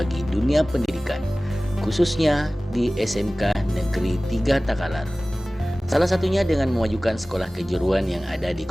dunia pendidikan, khususnya di SMK Negeri 3 Takalar. Salah satunya dengan memajukan sekolah kejuruan yang ada di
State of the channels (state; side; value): normal; both; correlation 0.98